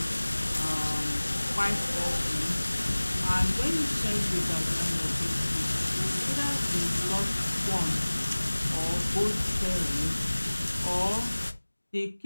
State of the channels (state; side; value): inverted; both; correlation -1.00